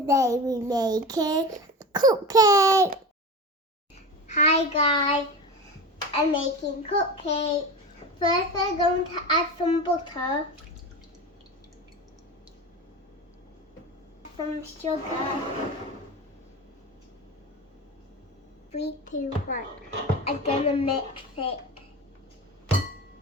we're making cupcake. Hi guys, I'm making cupcake. First I'm going to add some butter, some sugar. 3, 2, 1. I'm gonna mix it.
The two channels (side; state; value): both; normal; correlation 0.28